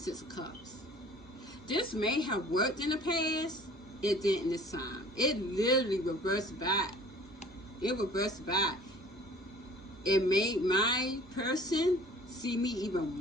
of Cups. This may have worked in the past. It didn't this time. It literally reversed back. It reversed back. It made my person see me even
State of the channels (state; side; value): normal; both; correlation 0.48